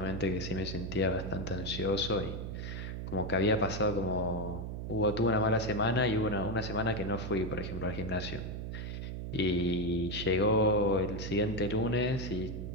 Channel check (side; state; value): right; noise; hum, 6 dB below the sound